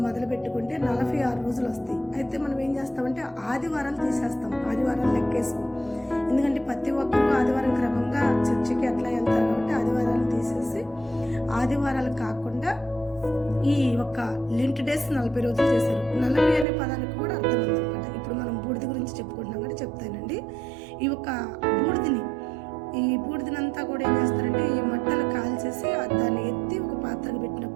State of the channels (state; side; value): drops out; left; at 16.7 s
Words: మొదలు పెట్టుకుంటే 46 రోజులు వస్తాయి. అయితే మనం ఏం చేస్తామంటే ఆదివారాలు తీసేస్తాం, ఆదివారాలు లెక్కేస్తాం. ఎందుకంటే ప్రతి ఒక్కరూ ఆదివారం క్రమంగా చర్చికి అట్లా వెళ్తారు కాబట్టి ఆదివారాలు తీసేసి ఆదివారాలు కాకుండా ఈ ఒక్క లెంట్ డేస్ 40 రోజులు చేశారు. 40 అనే పదానికి కూడా అర్థం ఉందన్నమాట. ఇప్పుడు మనం బూడిద గురించి చెప్పుకుంటున్నాం కాబట్టి చెప్తానండి. ఈ ఒక్క ఈ బూడిదనంతా కూడా ఏం చేస్తారంటే ఈ మట్టలు కాల్చేసి దాన్ని ఎత్తి ఒక పాత్రకు